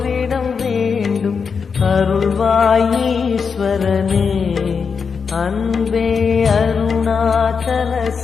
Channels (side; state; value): right; quieter; 5.8 dB